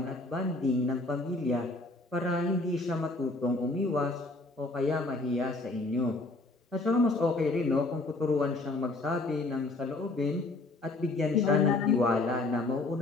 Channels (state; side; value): quieter; right; 3.0 dB